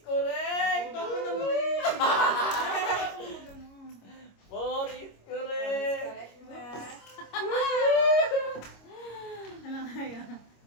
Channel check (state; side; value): late; right; 25 ms